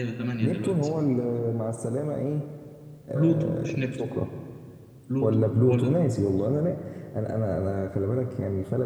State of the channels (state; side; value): identical; both; correlation 1.00